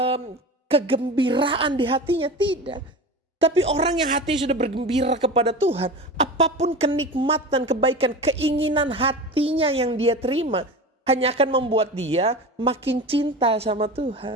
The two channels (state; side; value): normal; both; correlation 0.30